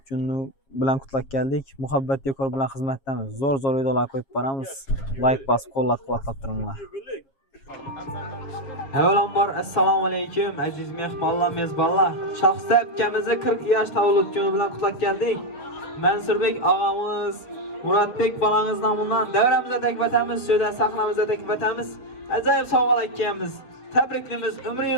kuni bilan qutlab keldik. Muhabbat dekor bilan xizmatdamiz. Zo'r videolar qo'yib boramiz. Like bosib, qo'llab-quvvatlab turinglar. Avvalambor assalomu alaykum aziz mehmonlar, mezbonlar. Shoxista akamizni 40 yosh tavallud kuni bilan qutlab keldik. Mansurbek og'amiz, Muratbek bolangiz nomidan davramizda taklif etamiz, shunda sahnamizda taklif etamiz. Ajoyib sovg'alar akamiz. Tabriklaymiz,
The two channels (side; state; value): right; late; 7.4 ms